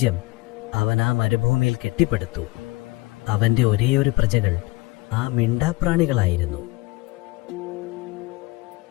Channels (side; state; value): right; quieter; 21.9 dB